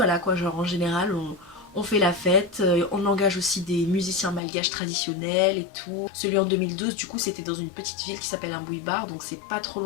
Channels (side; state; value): right; drops out; at 4.4 s